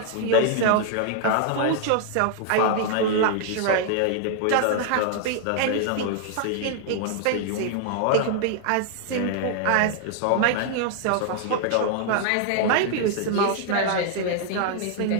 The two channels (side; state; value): both; different; correlation 0.00